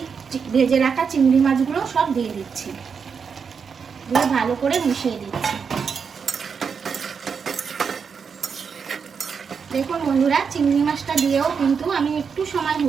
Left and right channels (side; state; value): left; quieter; 6.1 dB